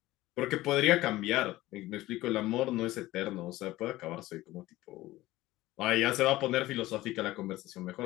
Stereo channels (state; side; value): quieter; right; 17.3 dB